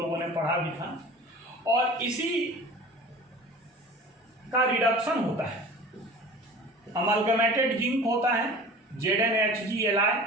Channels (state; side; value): normal; both; correlation 0.40